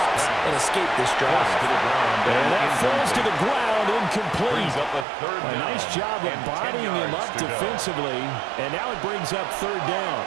and escape this drive. And that falls to the ground, incomplete. A nice job of bodying him up defensively, and now it brings up 3rd down.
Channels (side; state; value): left; drops out; at 5.1 s